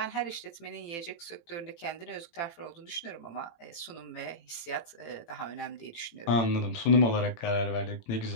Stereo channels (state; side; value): late; right; 18 ms